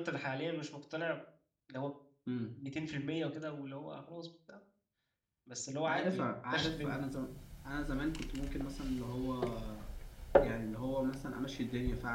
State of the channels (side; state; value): both; identical; correlation 1.00